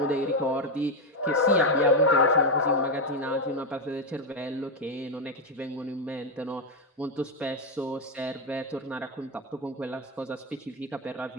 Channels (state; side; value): normal; both; correlation 0.06